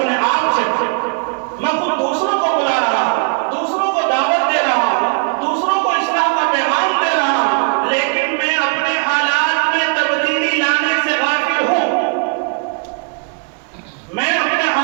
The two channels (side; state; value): left; quieter; 39.1 dB